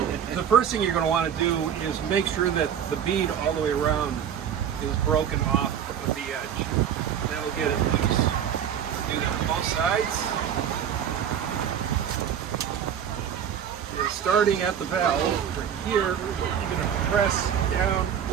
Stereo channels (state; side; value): quieter; left; 8.8 dB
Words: The first thing you're going to want to do is make sure that the bead all the way around is broken off of the edge. That'll get it loose. Do that on both sides. And starting at the valve, right here, you're going to press down,